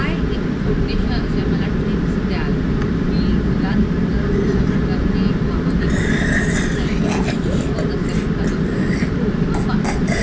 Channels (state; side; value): identical; both; correlation 1.00